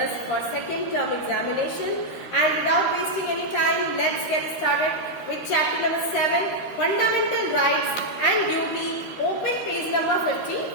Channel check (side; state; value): right; late; 13 ms